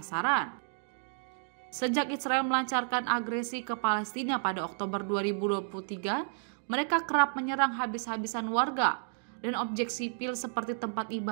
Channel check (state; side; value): silent; left; digital silence